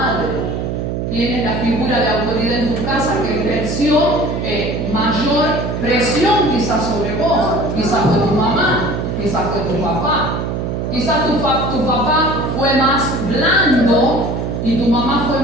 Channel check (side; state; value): right; noise; hum, 2 dB below the sound